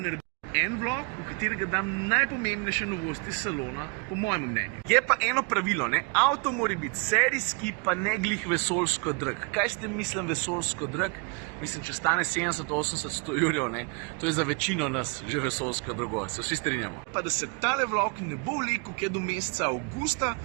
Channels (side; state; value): left; quieter; 31.7 dB